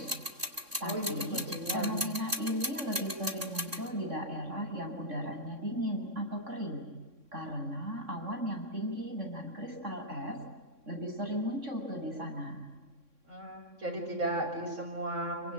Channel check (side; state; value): left; late; 3.6 ms